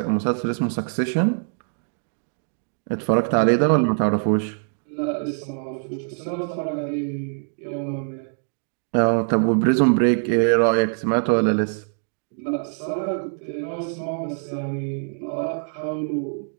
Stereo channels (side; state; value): left; silent; 63 dB below the other